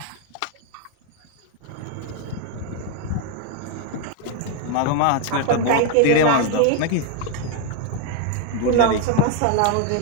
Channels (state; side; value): different; both; correlation 0.01